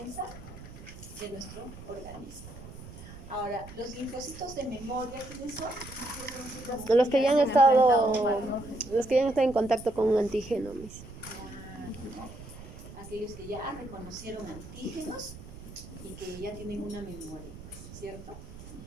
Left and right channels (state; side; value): noise; right; rumble, 15 dB below the sound